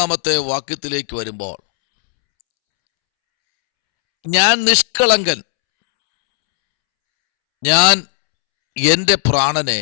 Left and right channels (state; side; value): silent; right; 70 dB below the other